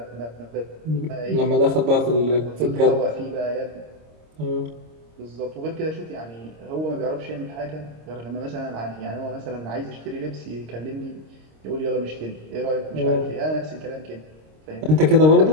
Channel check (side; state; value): left; late; 26 ms